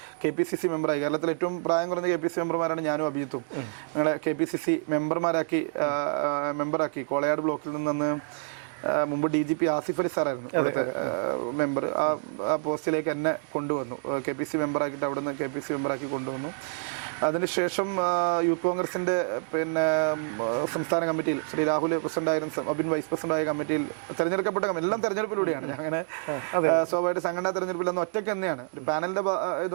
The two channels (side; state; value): left; silent; digital silence